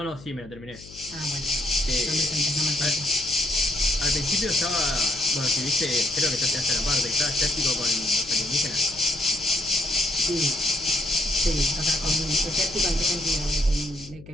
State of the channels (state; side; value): noise; left; hum, 19 dB below the sound